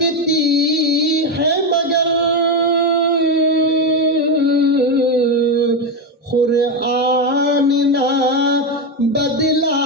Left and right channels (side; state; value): both; normal; correlation 0.11